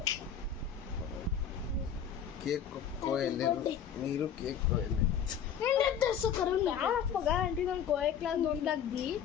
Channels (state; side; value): quieter; right; 8.3 dB